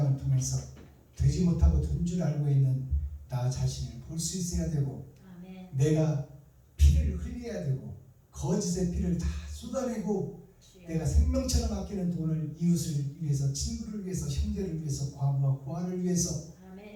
통해서 되지 못하고 된 줄 알고 있는 나 자신을 볼 수 있어야 되고 아멘. 내가 피를 흘려야 되고 거짓의 피를 다 쏟아내고 주여. 내가 생명처럼 아끼는 돈을 이웃을 위해서, 친구를 위해서, 형제를 위해서, 과부와 고아를 위해서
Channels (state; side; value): identical; both; correlation 1.00